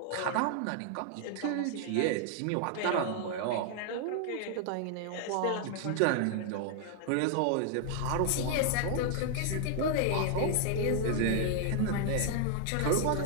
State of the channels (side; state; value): both; different; correlation 0.00